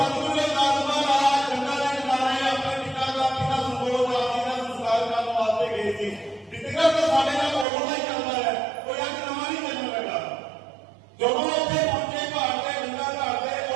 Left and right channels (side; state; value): left; drops out; at 7.7 s